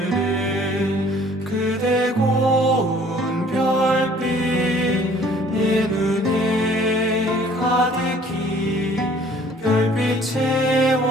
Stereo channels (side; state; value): both; normal; correlation 0.55